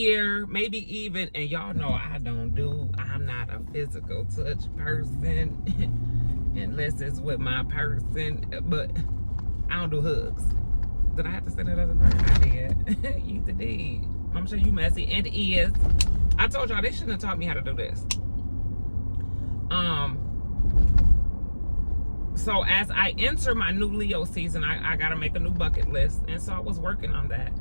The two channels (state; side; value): inverted; both; correlation -1.00